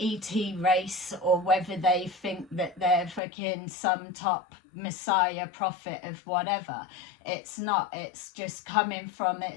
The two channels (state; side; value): drops out; right; at 3.2 s